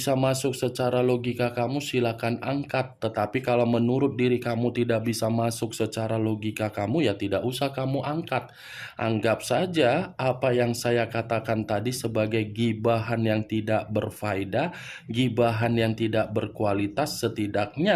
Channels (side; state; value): both; identical; correlation 1.00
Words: masuk secara logika kamu, silakan angkat. Tetapi kalau menurut diri kamu tidak bisa masuk secara logika kamu, ya tidak usah kamu angkat. Anggap saja apa yang saya katakan tadi sebagai gibahan yang tidak berfaedah, gibahan yang tidak berkualitas.